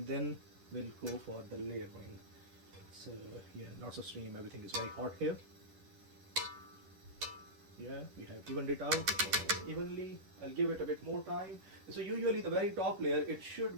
then we'll go for the layering. So yeah, lots of steam, everything is very hot here. Yeah, we have evened it out evenly. I'll give it a bit more time. So usually the very top layer, it should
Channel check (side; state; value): left; late; 11 ms